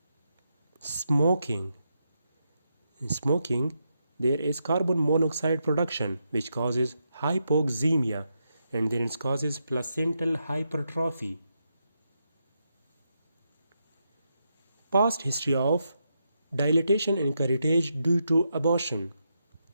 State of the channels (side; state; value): both; inverted; correlation -0.83